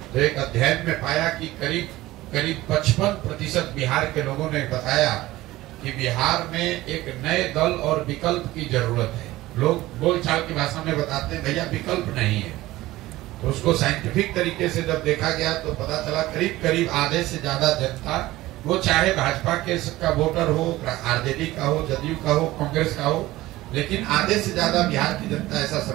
तो एक अध्ययन में पाया कि करीब 55% बिहार के लोगों ने बताया कि बिहार में एक नए दल और विकल्प की जरूरत है। लोग बोलचाल की भाषा में बताते हैं भैया विकल्प नहीं है। तो उसको साइंटिफिक तरीके से जब देखा गया तो पता चला करीब आधे से ज्यादा जनता, वो चाहे भाजपा के का वोटर हो, आरजेडी का हो, जदयू का हो, कांग्रेस का हो, लेकिन आधे से ज्यादा बिहार की जनता ऐसा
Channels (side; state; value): left; quieter; 17.3 dB